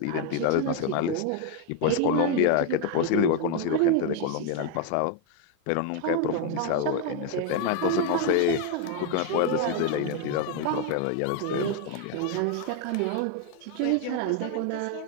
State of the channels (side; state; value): both; different; correlation 0.01